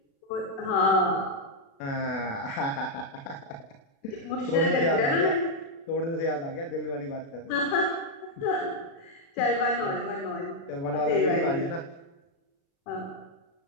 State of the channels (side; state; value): right; late; 36 ms